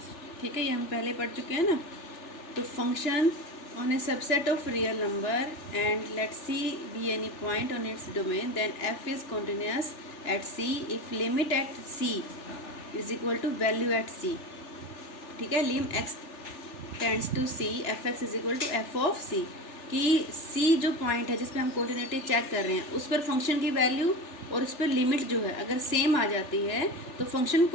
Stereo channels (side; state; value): right; late; 3.4 ms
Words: ठीक है, ये हम पहले पढ़ चुके हैं ना। तो function on a subset of real number and let C be any point on its domain, then f is continuous at C if limit at C is equal to value at C. ठीक है, lim x tends to C fx is equal to f of C। कि C जो पॉइंट है जिस पे हम कॉन्टिन्यूटी चेक कर रहे हैं उस पर फंक्शन की वैल्यू और उस पर लिमिट जो है अगर सेम आ जाती है तो फंक्शन